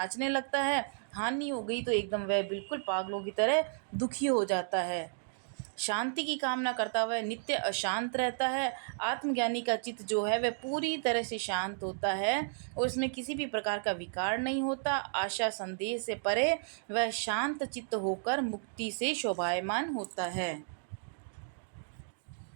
लगता है, हानि हो गई तो एकदम वह बिल्कुल पागलों की तरह दुखी हो जाता है। शांति की कामना करता हुआ नित्य अशांत रहता है। आत्मज्ञानी का चित्त जो है वह पूरी तरह से शांत होता है और उसमें किसी भी प्रकार का विकार नहीं होता। आशा संदेह से परे वह शांत चित्त होकर मुक्ति से शोभायमान होता है।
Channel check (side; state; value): left; silent; digital silence